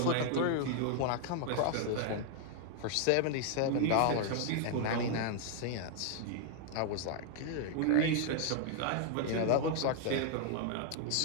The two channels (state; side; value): different; both; correlation 0.00